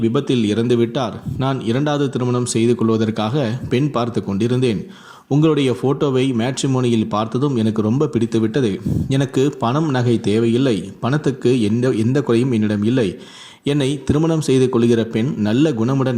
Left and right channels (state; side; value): identical; both; correlation 1.00